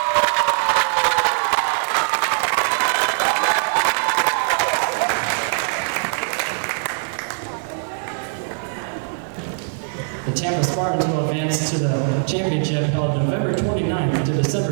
The Tampa Spartans will advance to the championship held November 29th to December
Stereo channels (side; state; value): left; silent; digital silence